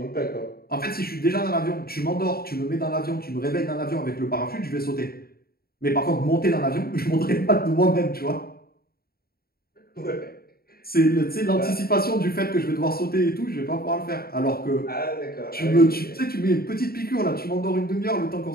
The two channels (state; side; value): late; right; 0.44 ms